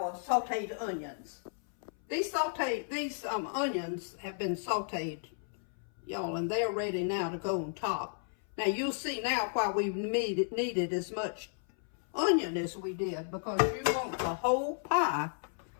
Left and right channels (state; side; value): silent; right; 55 dB below the other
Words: sauteed onions. These onions have been sauteed, y'all, and they're ready now to go on top. Now, you'll see now why we needed as much onion as we did, because you want the whole pie